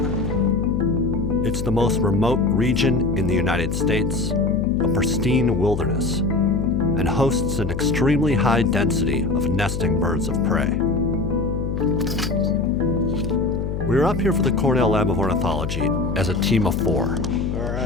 It's the most remote region in the United States, a pristine wilderness, and hosts an extremely high density of nesting birds of prey. We were up here for the Cornell Lab of Ornithology as a team of 4. All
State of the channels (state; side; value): noise; left; hum, 3 dB below the sound